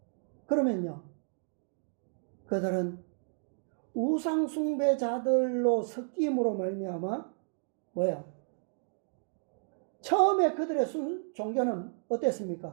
그러면요, 그들은 우상숭배자들로 섞임으로 말미암아 뭐예요? 처음에 그들의 종교는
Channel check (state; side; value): silent; left; digital silence